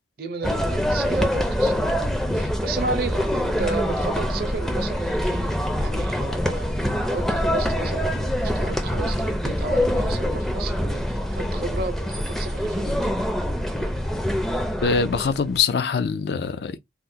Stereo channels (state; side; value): normal; both; correlation 0.72